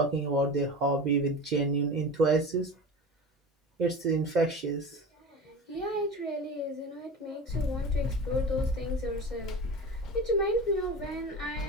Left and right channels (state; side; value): normal; both; correlation 0.31